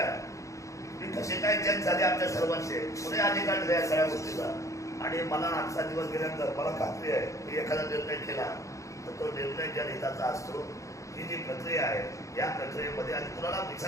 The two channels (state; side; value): late; right; 0.15 ms